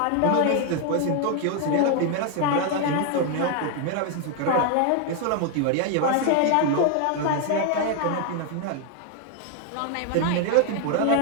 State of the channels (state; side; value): different; both; correlation 0.01